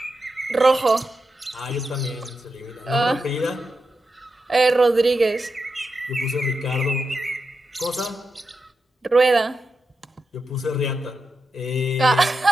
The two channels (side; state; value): both; normal; correlation 0.88